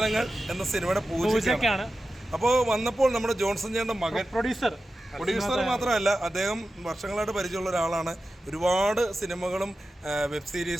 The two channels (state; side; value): normal; both; correlation 0.93